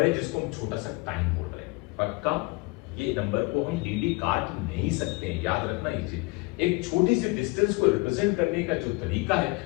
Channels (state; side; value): quieter; right; 25.7 dB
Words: है जिसको हम छोटा सा टाइम बोल रहे हैं। पक्का? ये नंबर को हम dd काट नहीं सकते हैं, याद रखना ये चीज। एक छोटी सी डिस्टेंस को रिप्रेजेंट करने का जो तरीका है